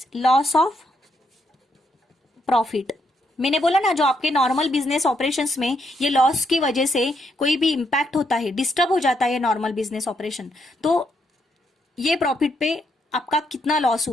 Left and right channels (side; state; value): both; normal; correlation 0.77